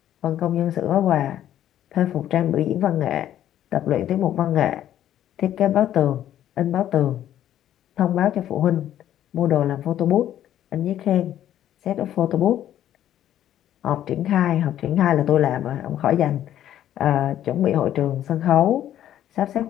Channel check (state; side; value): quieter; right; 11.6 dB